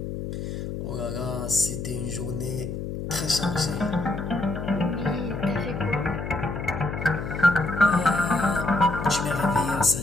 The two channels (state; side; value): noise; left; hum, 5 dB below the sound